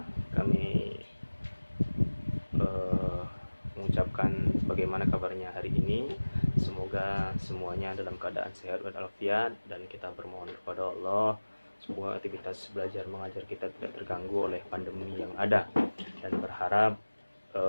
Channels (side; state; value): both; inverted; correlation -1.00